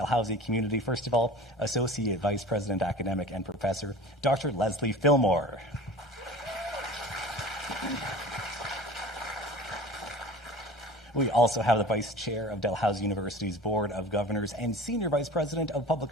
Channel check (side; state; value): both; normal; correlation 0.38